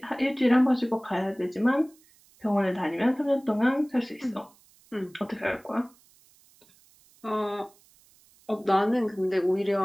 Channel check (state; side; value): noise; right; hiss, 30 dB below the sound